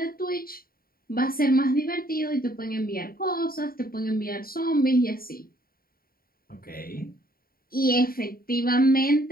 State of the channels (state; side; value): late; right; 0.43 ms